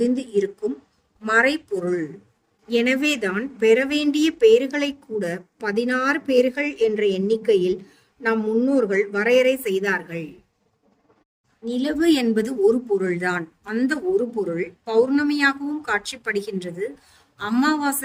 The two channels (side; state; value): both; identical; correlation 1.00